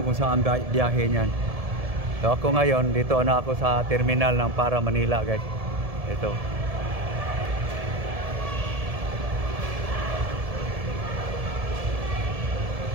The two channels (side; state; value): left; late; 1.7 ms